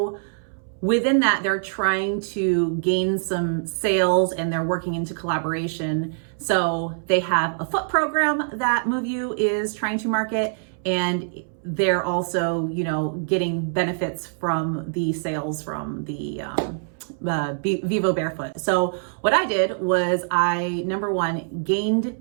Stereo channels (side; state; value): left; silent; 63 dB below the other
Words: within that, they're trying to gain some sales, and they're working into collaboration. So they have a foot program that MoveU is trying to market, and they're also, you know, getting benefits from the sales from the Vivo Barefoot. So what I did was I, number one, gained